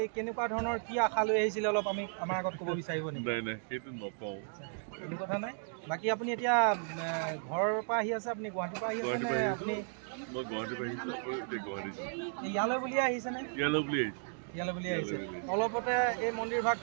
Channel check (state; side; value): silent; left; 55 dB below the other